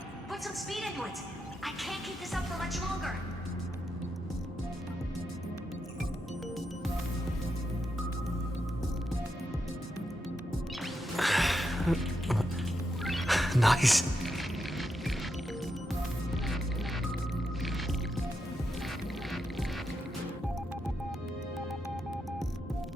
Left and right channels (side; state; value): both; normal; correlation 0.84